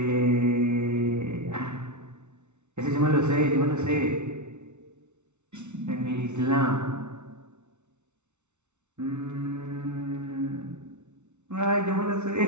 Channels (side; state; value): left; late; 0.82 ms